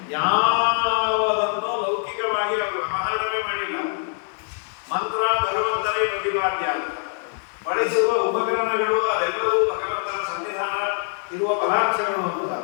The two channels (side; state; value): right; silent; 57 dB below the other